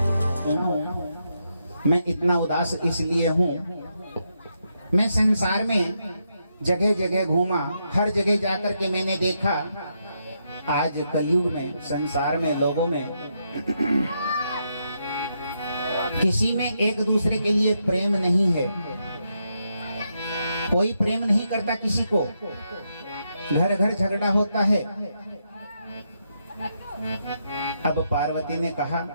मैं इतना उदास इसलिए हूँ, मैं संसार में जगह जगह घूमा, हर जगह जाकर के मैंने देखा आज कलयुग में संसार में लोगों में किसी में एक दूसरे के लिए प्रेम नहीं है। कोई प्रेम नहीं करता किसी को, घर घर झगड़ा होता है। अब पार्वती ने कहा,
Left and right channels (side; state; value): both; inverted; correlation -0.81